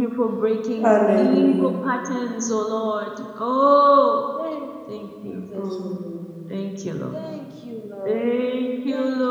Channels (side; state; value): both; identical; correlation 1.00